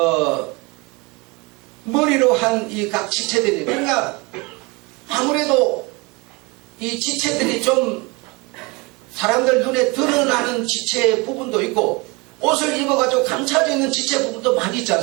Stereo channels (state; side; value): quieter; left; 26.7 dB